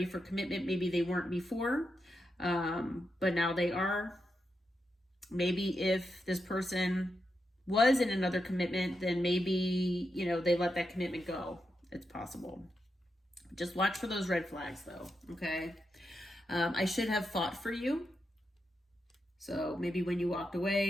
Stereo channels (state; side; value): normal; both; correlation 0.86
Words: for commitment. Maybe they weren't before, but now they are. Maybe if this person was in another commitment, then maybe, they let that commitment go. It's possible. Just watch for those red flags though. Okay. I should have fought for you. So maybe when you walked